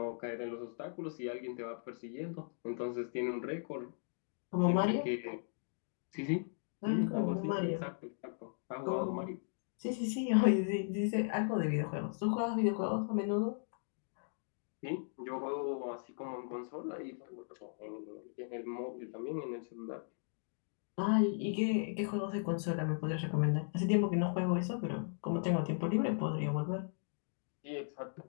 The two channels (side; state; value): right; silent; digital silence